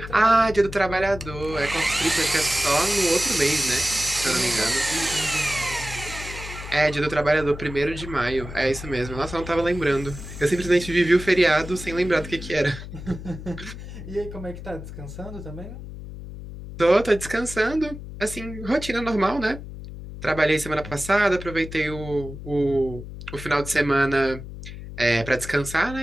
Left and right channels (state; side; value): noise; left; hum, 11 dB below the sound